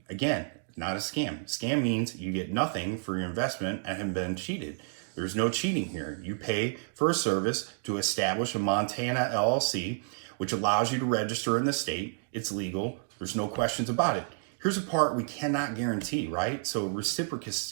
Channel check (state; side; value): silent; left; digital silence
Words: Again, not a scam. Scam means you get nothing for your investment and have been cheated. There's no cheating here. You pay for a service to establish a Montana LLC, which allows you to register in the state. It's legal. There's no questions about it. Here's a part we cannot guarantee, right? So